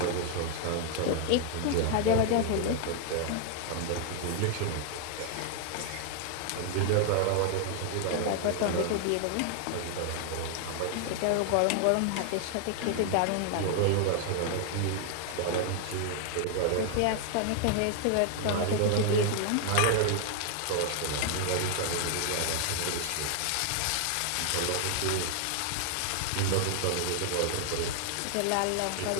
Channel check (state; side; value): different; both; correlation 0.00